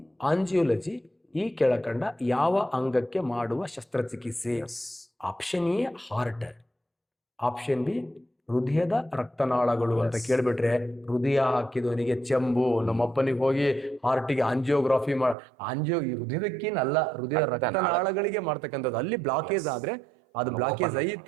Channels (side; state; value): left; drops out; at 15.4 s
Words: ಆಂಜಿಯೋಲಜಿ ಈ ಕೆಳಕಂಡ ಯಾವ ಅಂಗಕ್ಕೆ ಮಾಡುವ ಶಸ್ತ್ರಚಿಕಿತ್ಸೆ? Option A heart, option B ಹೃದಯದ ರಕ್ತನಾಳಗಳು ಅಂತ ಕೇಳ್ಬಿಟ್ರೆ ಹೃದಯ ಹಾಕಿದವನಿಗೆ ಚೆಂಬು. ನಮ್ಮಪ್ಪನಿಗೆ ಹೋಗಿ ಹಾರ್ಟಿಗೆ ಆಂಜಿಯೋಗ್ರಾಫಿ ಈ ಹೃದಯದಕ್ಕೇನಲ್ಲ, ಹೃದಯದ ರಕ್ತನಾಳಗಳಿಗೆ ಮಾಡ್ತಕ್ಕಂಥದ್ದು. ಅಲ್ಲಿ ಬ್ಲಾಕೇಜ್ ಆದ್ರೆ ಅದು ಬ್ಲಾಕೇಜ್